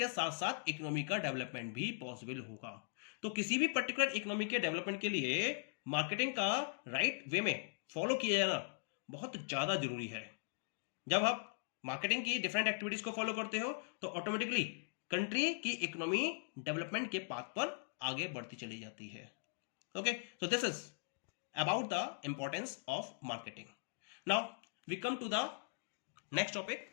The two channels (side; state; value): right; silent; digital silence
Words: साथ साथ इकोनॉमी का डेवलपमेंट भी पॉसिबल होगा। तो किसी भी पर्टिकुलर इकोनॉमी के डेवलपमेंट के लिए मार्केटिंग का राइट वे में फॉलो किया जाना बहुत ज्यादा जरूरी है। जब आप मार्केटिंग की डिफरेंट एक्टिविटीज को फॉलो करते हो तो ऑटोमेटिकली कंट्री की इकोनॉमी डेवलपमेंट के पाथ पर आगे बढ़ती चली जाती है। Okay, so this is about the importance of marketing. Now we come to the next topic.